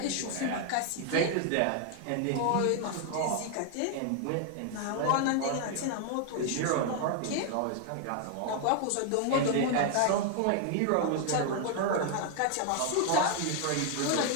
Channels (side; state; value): both; different; correlation 0.00